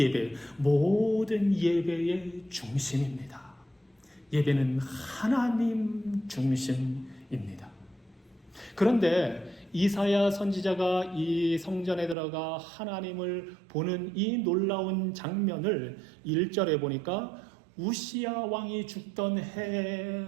모든 예배의 중심입니다. 예배는 하나님 중심입니다. 그런데 이사야 선지자가 이 성전에 들어가 하나님을 보는 이 놀라운 장면을 1절에 보니까 우시야 왕이 죽던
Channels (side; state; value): left; drops out; at 12.2 s